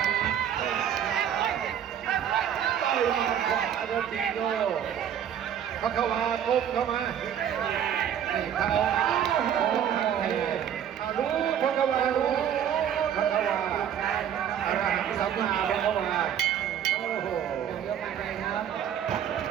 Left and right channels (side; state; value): left; quieter; 9.4 dB